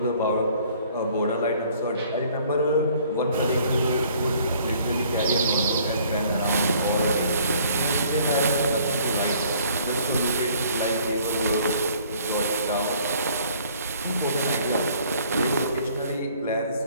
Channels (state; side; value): inverted; both; correlation -0.58